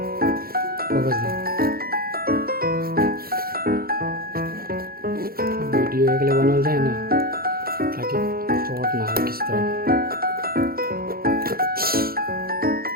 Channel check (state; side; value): late; left; 0.44 ms